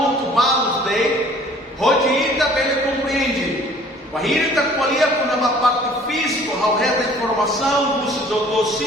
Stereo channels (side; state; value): both; normal; correlation 0.53